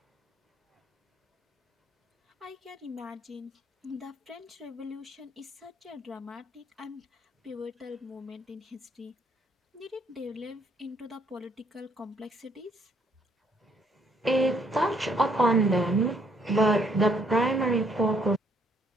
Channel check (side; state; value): both; normal; correlation 0.67